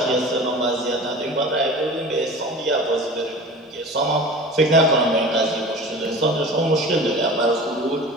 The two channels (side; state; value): both; normal; correlation 0.38